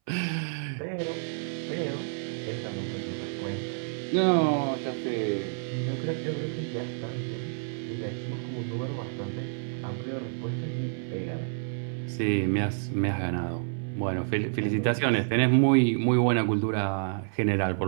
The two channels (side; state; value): left; silent; 59 dB below the other